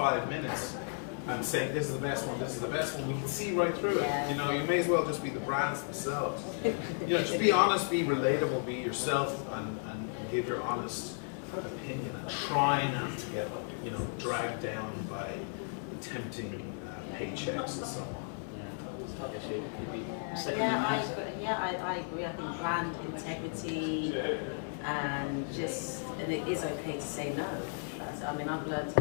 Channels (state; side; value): silent; right; 55 dB below the other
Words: minutes and saying this is the best one, we can see right through it. You know, you may as well just be the brands themselves. You know, just be honest, be relatable, be yourself, and give your honest opinion, and try not to get, you know, dragged down by the tempting paychecks and so on. Yeah, I guess you'd be I agree. I think brand integrity and it is okay to say no. I mean, I've learned